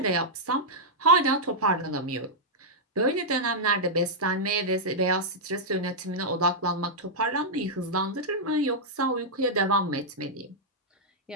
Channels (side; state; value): both; normal; correlation -0.07